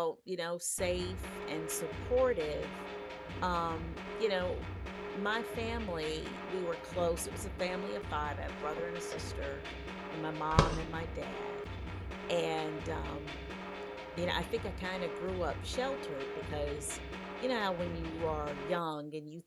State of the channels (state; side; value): identical; both; correlation 1.00